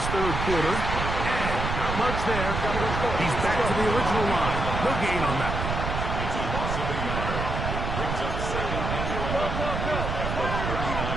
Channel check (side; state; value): right; noise; rumble, 3 dB below the sound